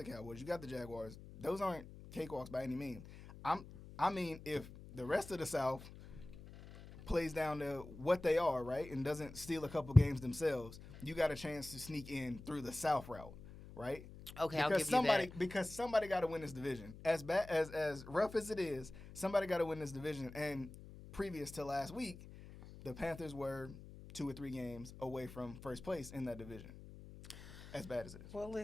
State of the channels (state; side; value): noise; left; hum, 15 dB below the sound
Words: Cowboys, you got the Jaguars. Those aren't cakewalks by any means. I mean, if the rest of the South plays down to what they are, right, and doesn't steal a couple games themselves, you got a chance to sneak in through the South route, right? Okay, Because I'll give somebody, you that. because somebody got to win this division. As bad as rough as it is, somebody got to win this division. And previous to last week, the Panthers were 2 or 3 games away from first place in that division. As bad as it is. Well,